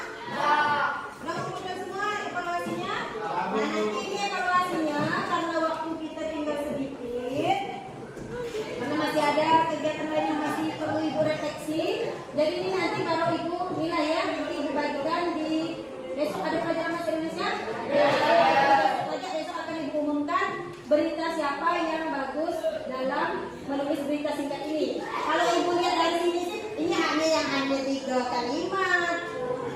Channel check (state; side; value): identical; both; correlation 1.00